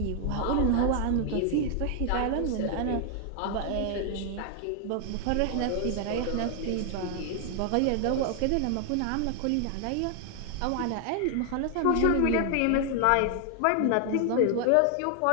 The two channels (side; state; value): both; different; correlation 0.00